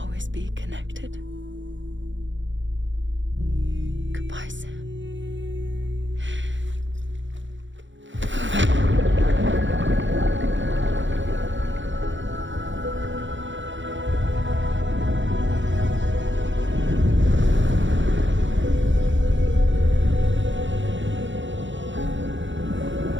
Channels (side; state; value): left; late; 0.54 ms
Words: be connected. Goodbye, Sam.